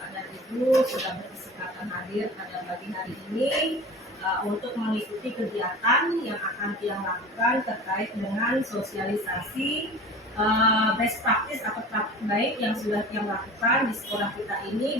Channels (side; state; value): both; normal; correlation 0.38